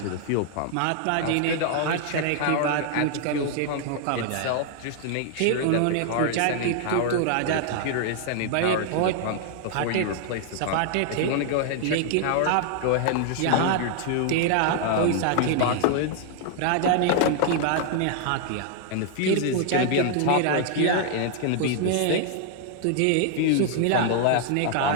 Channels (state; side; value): different; both; correlation 0.00